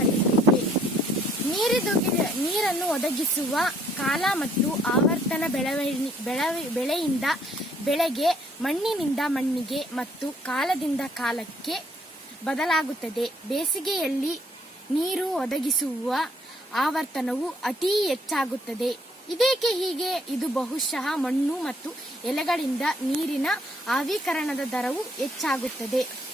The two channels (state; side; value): normal; both; correlation 0.64